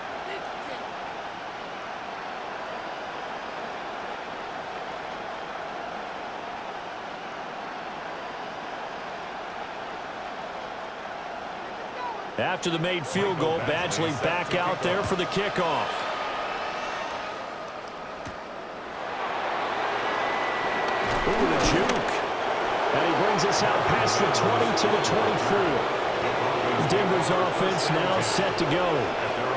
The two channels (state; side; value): identical; both; correlation 1.00